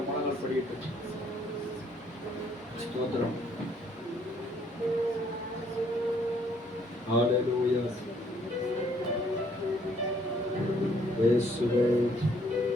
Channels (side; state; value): both; normal; correlation 0.65